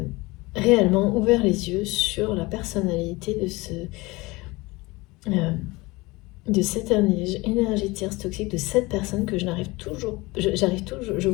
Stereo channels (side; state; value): right; quieter; 22.5 dB